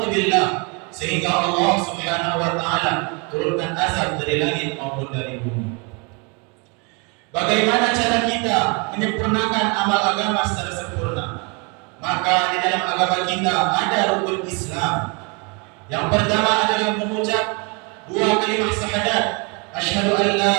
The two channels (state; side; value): quieter; left; 32.4 dB